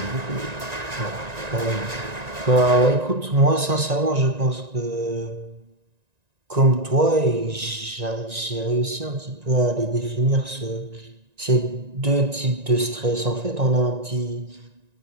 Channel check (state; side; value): late; left; 1.9 ms